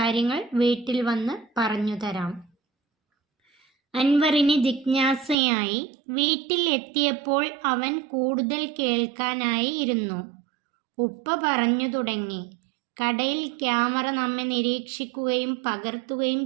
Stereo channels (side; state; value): left; drops out; at 5.4 s